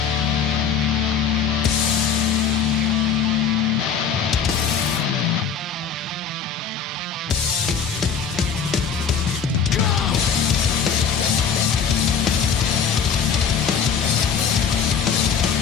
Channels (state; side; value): quieter; right; 6.7 dB